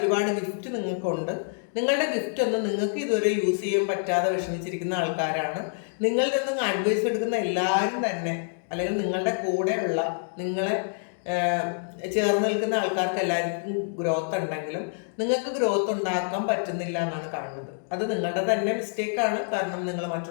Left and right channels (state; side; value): silent; right; digital silence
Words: ഗിഫ്റ്റ് നിങ്ങൾക്കുണ്ട്. നിങ്ങളുടെ ഗിഫ്റ്റ് ഒന്നും നിങ്ങൾക്ക് ഇതുവരെ യൂസ് ചെയ്യാൻ പറ്റാതെ വിഷമിച്ചിരിക്കുന്ന ആൾക്കാരാണ്. നിങ്ങളിൽ നിന്നും അഡ്വൈസ് എടുക്കുന്ന എല്ലാവരും തന്നെ, അല്ലെങ്കിൽ നിങ്ങളുടെ കൂടെയുള്ള നിങ്ങളെ ചേർന്ന് നിൽക്കുന്ന ആൾക്കാർക്ക് എല്ലാവർക്കും ഗ്രോത്ത് ഉണ്ടെങ്കിലും നിങ്ങൾക്ക് ഗ്രോത്ത് ഉണ്ടാക്കാൻ പറ്റുന്നില്ല എന്നാണ് കാണുന്നത്. അത് നിങ്ങളുടെ തന്നെ മിസ്റ്റേക്കാണ്. കാരണം നിങ്ങൾ